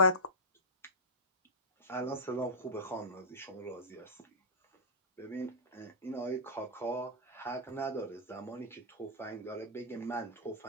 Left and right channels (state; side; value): normal; both; correlation -0.14